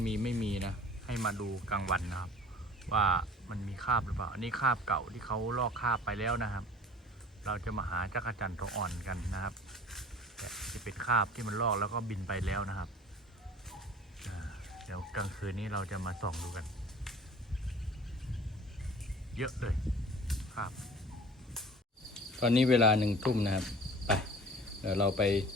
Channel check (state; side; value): normal; both; correlation 0.45